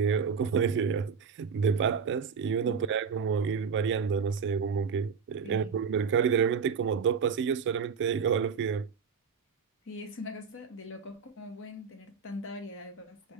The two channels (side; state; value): left; quieter; 6.1 dB